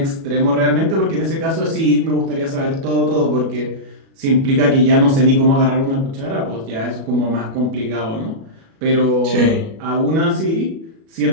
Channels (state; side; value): late; left; 36 ms